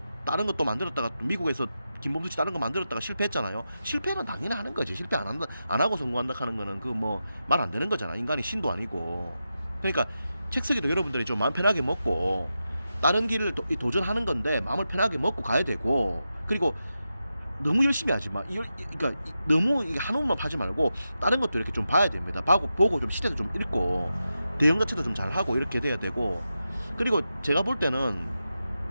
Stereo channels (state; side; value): inverted; both; correlation -0.90